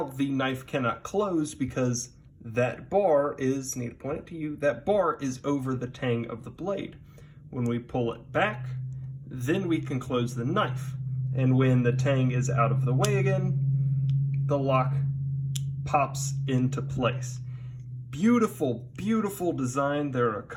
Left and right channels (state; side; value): identical; both; correlation 1.00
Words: the knife cannot close because that bar is, need to point it to you, that bar is over the tang of the blade. When we pull it back, then we can close the knife. And when the tang is out of the way again, the lock pops into place. Beautiful, beautiful design. There are a